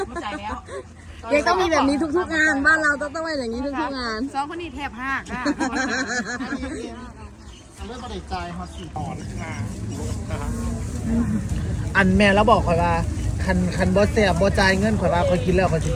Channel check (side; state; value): both; identical; correlation 1.00